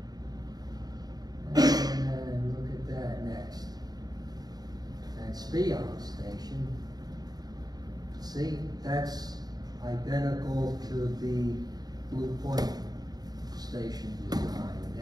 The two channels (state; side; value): late; left; 0.19 ms